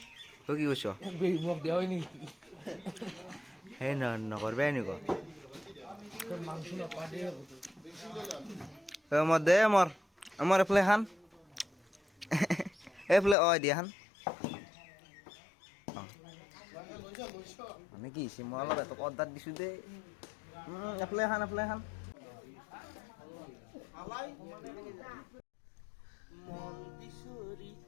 তই কি কৈছ মোক দিয়া হয় নেকি সেই নকৰবাই এনেকুৱা মোৰ দে আমাৰ এইফালে খান এইফালে দিয়া খান মানে কি হৈছে মই অলপ এটক অৰ্ডাৰ দিছোঁ দেই এফালে খান মন বিচৰি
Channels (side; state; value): right; drops out; at 13.4 s